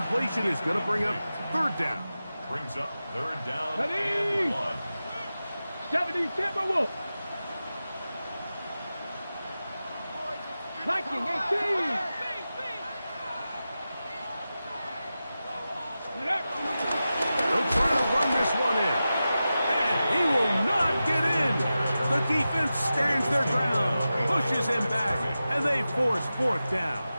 is going to bring up third down. Brings up third down Ready. and 1. 70 Timberwolf. Viking 18. They'll try to run this one in. And he will not get in. The defense stands their ground, pushes him back, and they force fourth down.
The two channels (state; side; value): inverted; both; correlation -0.93